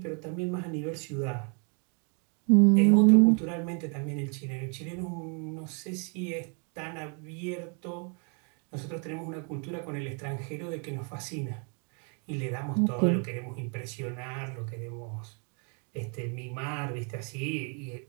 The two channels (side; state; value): left; quieter; 37.7 dB